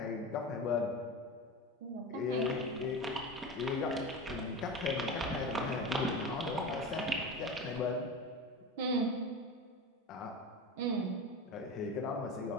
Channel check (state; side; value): normal; both; correlation 0.27